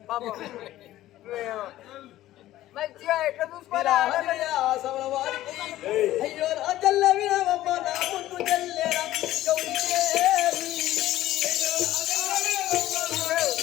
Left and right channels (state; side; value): quieter; right; 14.7 dB